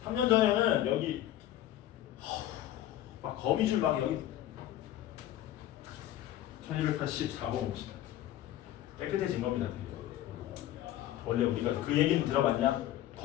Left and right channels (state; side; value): quieter; right; 13.1 dB